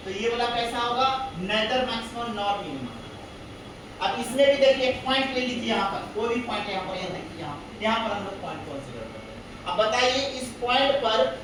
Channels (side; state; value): both; identical; correlation 1.00